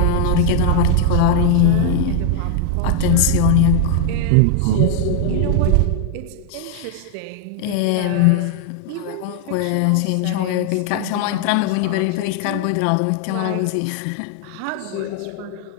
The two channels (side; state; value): both; different; correlation 0.00